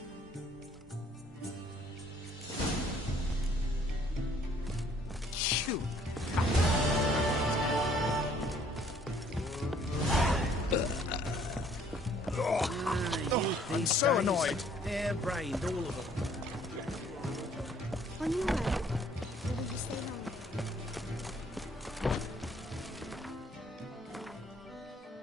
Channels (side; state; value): both; normal; correlation 0.61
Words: Shoot. I'm so annoyed. Hair-brained, all of them. On your way? Or will you stay long?